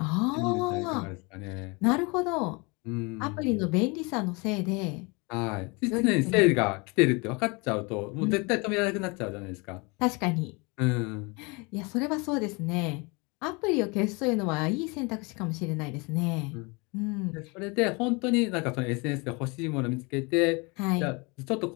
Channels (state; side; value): quieter; right; 28.8 dB